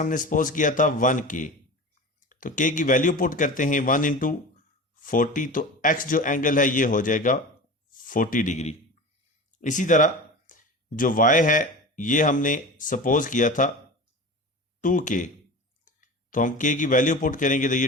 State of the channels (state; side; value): normal; both; correlation 0.32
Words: सपोज किया था 1k, तो k की वैल्यू पुट करते हैं 1 इंटू 40, तो x जो एंगल है ये हो जाएगा 40 डिग्री। इसी तरह जो y है ये हमने सपोज किया था 2k, तो हम k की वैल्यू पुट करेंगे तो